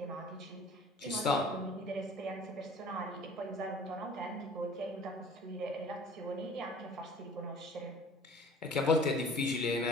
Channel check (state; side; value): normal; both; correlation 0.48